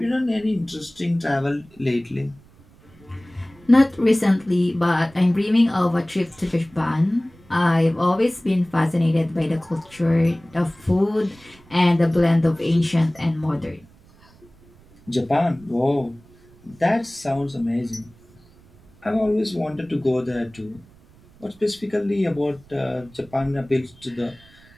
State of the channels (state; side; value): noise; right; rumble, 27 dB below the sound